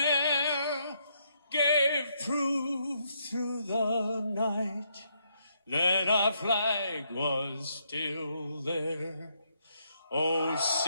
air, gave proof through the night that our flag was still there. Oh,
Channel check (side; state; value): both; inverted; correlation -0.75